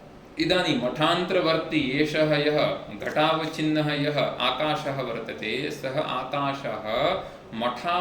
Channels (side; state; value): both; identical; correlation 1.00